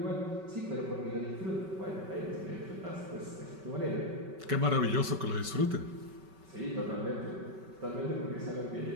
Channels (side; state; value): left; late; 5.3 ms